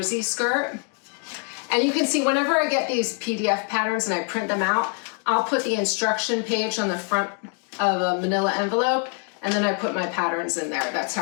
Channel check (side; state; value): right; quieter; 38.8 dB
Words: skirt. And you can see whenever I get these PDF patterns and I print them out, I'll put the instruction page on the front of a manila envelope, and then I put my patterns in there. That's